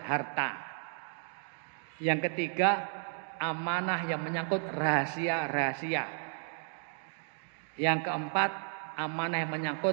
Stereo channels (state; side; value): silent; left; 56 dB below the other